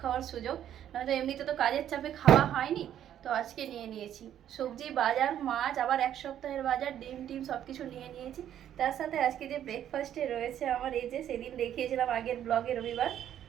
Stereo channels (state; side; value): quieter; left; 10.6 dB